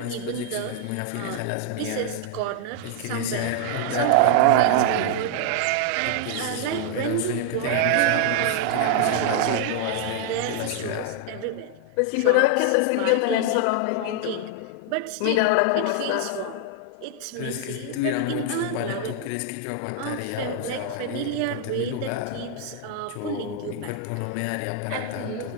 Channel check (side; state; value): both; different; correlation 0.00